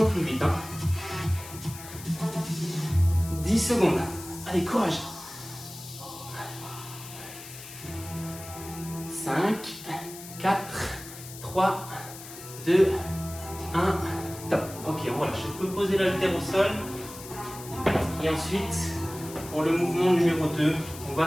plus vite. Hein. 10 secondes. Allez, courage. 5, 4, 3, 2, 1. Top. Ok, on relâche. Je peux poser l'haltère au sol. Et ensuite, pour le mouvement numéro 2, on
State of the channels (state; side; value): noise; left; hiss, 14 dB below the sound